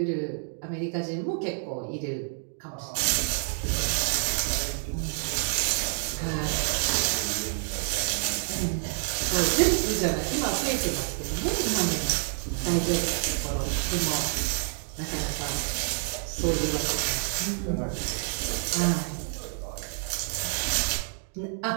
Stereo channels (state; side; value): silent; left; 59 dB below the other